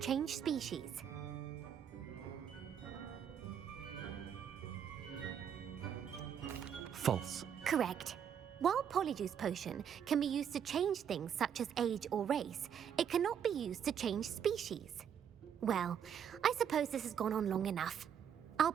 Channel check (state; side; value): quieter; left; 8.4 dB